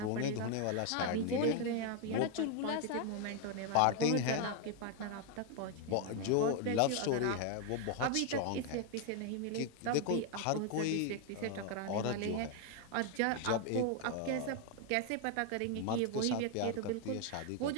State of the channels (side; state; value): both; different; correlation 0.01